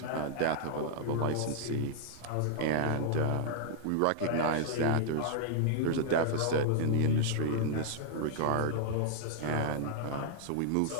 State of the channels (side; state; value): both; different; correlation -0.01